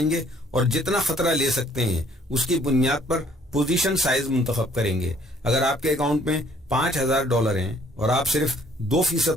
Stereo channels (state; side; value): normal; both; correlation 0.61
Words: گے اور جتنا خطرہ لے سکتے ہیں اس کی بنیاد پر پوزیشن سائز منتخب کریں گے. اگر آپ کے اکاؤنٹ میں $5,000 ہیں اور آپ صرف